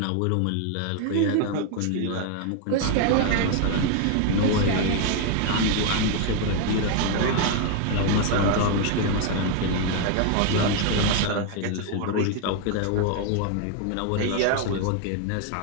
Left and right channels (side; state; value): both; different; correlation 0.01